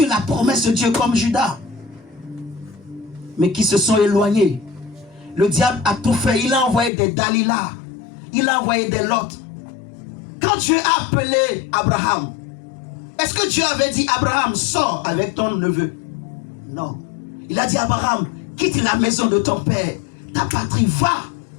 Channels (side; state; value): right; drops out; at 6.9 s